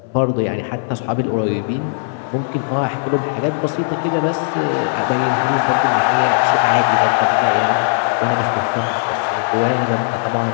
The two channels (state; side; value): silent; right; 66 dB below the other